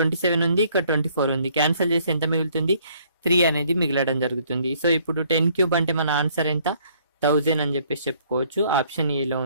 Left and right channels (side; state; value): both; inverted; correlation -0.63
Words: ఉంది, ఇక్కడ 24 ఉంది. క్యాన్సిల్ చేసి ఎంత మిగులుతుంది, 3 అనేది మిగలడం జరుగుతుంది. సో ఇప్పుడు 10 క్యూబ్ అంటే మన ఆన్సర్ ఎంత, 1000 అని చెప్పేసి చెప్పుకోవచ్చు. ఆప్షన్ ఏలో